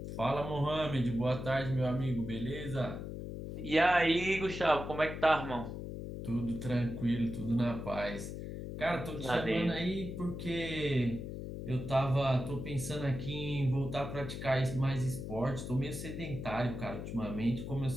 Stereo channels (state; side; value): noise; left; hum, 7 dB below the sound